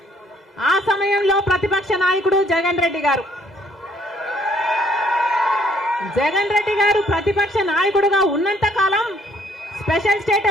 ఆ సమయంలో ప్రతిపక్ష నాయకుడు జగన్ రెడ్డి గారు ప్రతిపక్ష నాయకుడుగా ఉన్నంత కాలం స్పెషల్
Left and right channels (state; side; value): normal; both; correlation 0.64